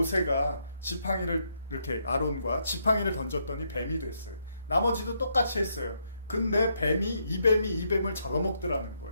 지팡이를 이렇게 아론과 지팡이를 던졌더니 뱀이 됐어요. 나머지도 똑같이 했어요. 근데 이 뱀을 잡아먹더라는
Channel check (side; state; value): both; inverted; correlation -0.76